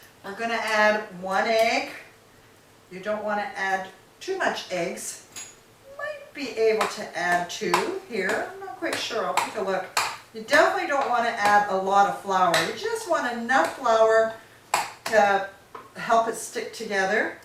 We're going to add 1 egg. You don't want to add too much eggs. Might be able to add 2 here. I'm not quite sure. I'll take a look. You definitely don't want to add a lot of flour. You just want enough flour to help it stick together.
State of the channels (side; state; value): both; identical; correlation 1.00